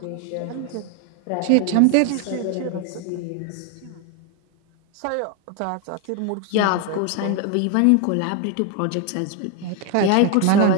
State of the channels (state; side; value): different; both; correlation 0.01